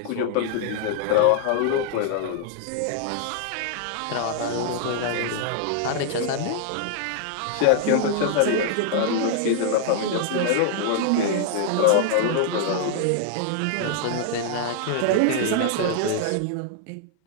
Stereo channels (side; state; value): both; different; correlation -0.01